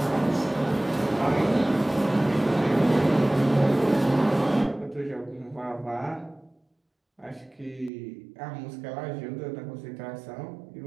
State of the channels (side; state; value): left; drops out; at 7.9 s